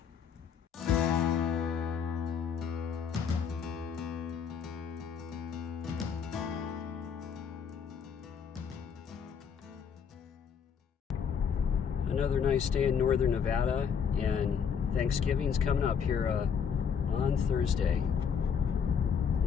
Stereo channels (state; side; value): quieter; right; 7.1 dB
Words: Another nice day in northern Nevada, and Thanksgiving's coming up here on Thursday.